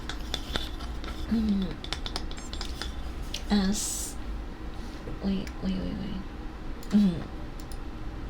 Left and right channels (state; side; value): identical; both; correlation 1.00